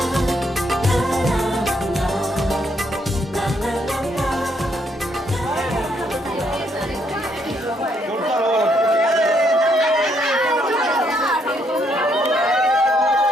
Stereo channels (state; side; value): normal; both; correlation 0.73